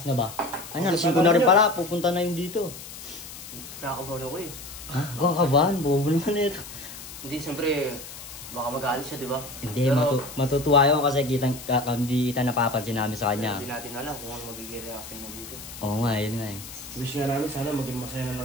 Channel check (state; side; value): noise; left; hiss, 13 dB below the sound